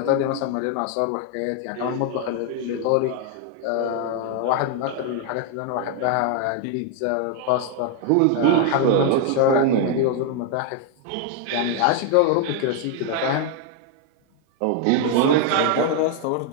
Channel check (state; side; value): different; both; correlation 0.00